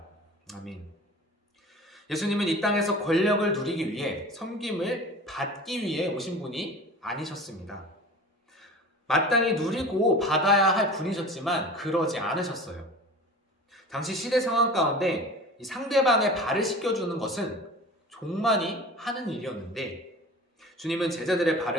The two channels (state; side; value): normal; both; correlation 0.38